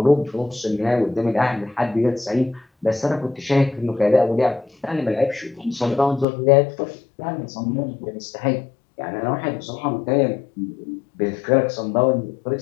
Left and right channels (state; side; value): drops out; right; at 6.2 s